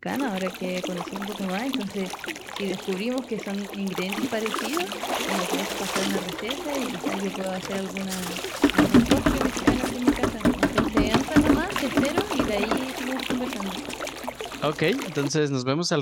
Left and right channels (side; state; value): both; identical; correlation 1.00